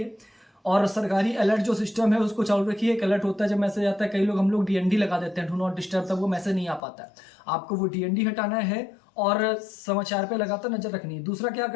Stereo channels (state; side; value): drops out; right; at 6.8 s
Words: और सरकारी अलर्ट जो सिस्टम है उसको चालू रखिए। एक अलर्ट होता है जब मैसेज आता है, कई लोग हम लोग डीएनडी लगा देते हैं, डू नॉट डिस्टर्ब, तब वो मैसेज नहीं आ पाता है। आपको वो डीएनडी हटाना है और समाचार पे लगातार नजर रखनी है। दूसरा क्या